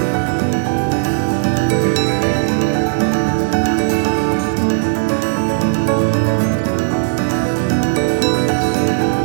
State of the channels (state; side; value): silent; left; digital silence